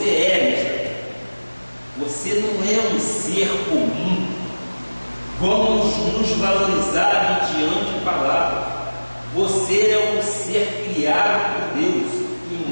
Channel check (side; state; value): both; inverted; correlation -1.00